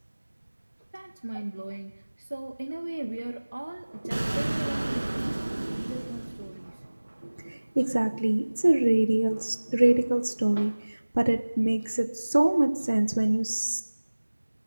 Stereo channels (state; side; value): inverted; both; correlation -1.00